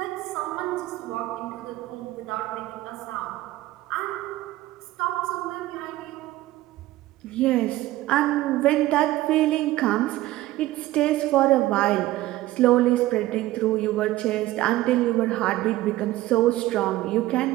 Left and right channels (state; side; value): quieter; left; 16.4 dB